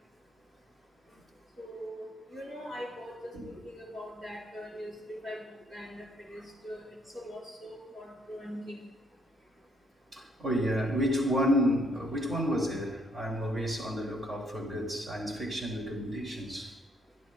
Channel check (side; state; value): both; normal; correlation 0.69